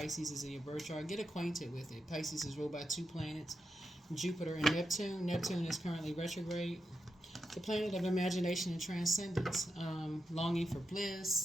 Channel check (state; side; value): normal; both; correlation 0.86